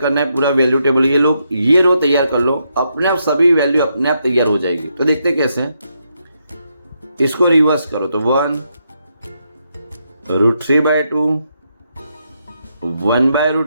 है पूरा वैल्यू टेबल, ये लोग ये रो तैयार कर लो, अपने आप सभी वैल्यू अपने आप तैयार हो जाएगी। तो देखते कैसे, इसको रिवर्स करो तो 1, √3/2,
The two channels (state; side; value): inverted; both; correlation -0.80